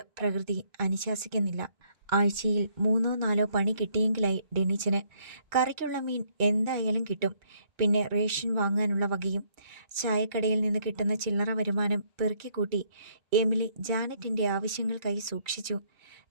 പ്രകൃതി അനുശാസിക്കുന്നില്ല. ആഴ്ചയിൽ 3-4 പണി കിട്ടിയെങ്കിലായി ഡെന്നിച്ചന്. കറിക്കുള്ള മീൻ എന്തായാലും കിട്ടും. പിന്നെ റേഷൻ വാങ്ങാനുള്ള വകയും. ചായക്കടയിൽ നിന്ന് കിട്ടുന്ന ചില്ലറ വരുമാനം പെറുക്കിക്കൂട്ടി എമിലി ജാനറ്റിൻ്റെ ആവശ്യങ്ങൾക്കായി സൂക്ഷിച്ചു.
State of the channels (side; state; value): left; late; 2.2 ms